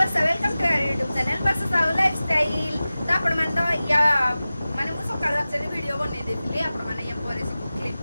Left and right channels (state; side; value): inverted; both; correlation -0.96